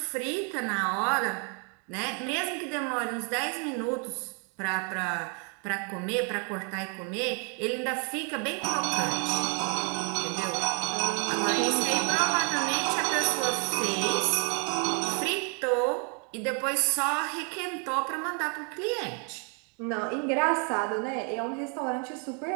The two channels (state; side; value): quieter; left; 38.3 dB